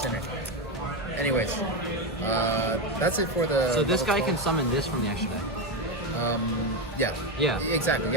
Anyways, that's it for the. So this level guy 12. can summon this from the extra deck. Yeah. Yeah. Exactly.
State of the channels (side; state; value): both; normal; correlation 0.11